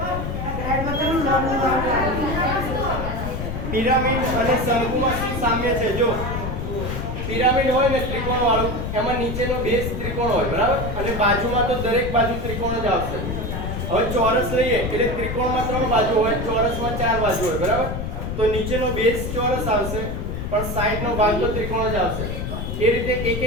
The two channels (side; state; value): left; noise; rumble, 4 dB below the sound